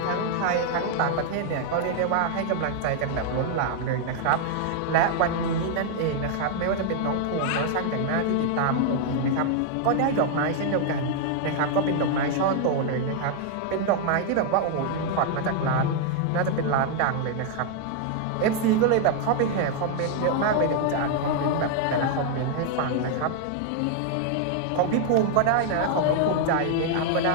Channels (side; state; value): both; different; correlation 0.00